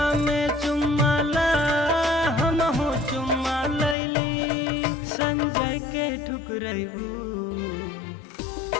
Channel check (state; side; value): drops out; right; at 4.0 s